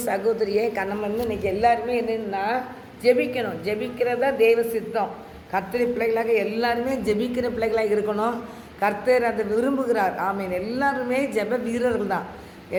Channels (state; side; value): identical; both; correlation 1.00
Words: சகோதரியே நம்ம வந்து இன்றைக்கி எல்லாருமே என்னென்னா ஜெபிக்கணும். ஜெபிக்கிறதா தெய்வ சித்தம். கர்த்தர் பிள்ளைகளாக எல்லாருமே ஜெபிக்கிற பிள்ளைகளாக இருக்கணும். கர்த்தர் அதை விரும்புகிறார். ஆமீன். எல்லாருமே ஜெப வீரர்கள் தான்.